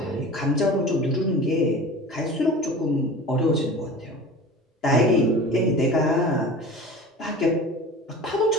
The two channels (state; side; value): normal; both; correlation 0.37